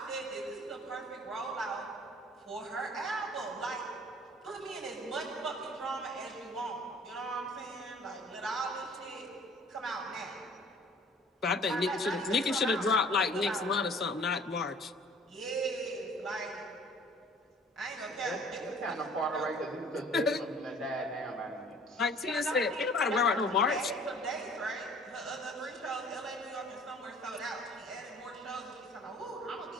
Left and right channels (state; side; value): normal; both; correlation 0.51